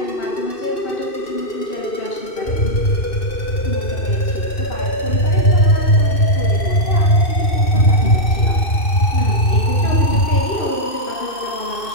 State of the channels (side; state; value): right; late; 2.6 ms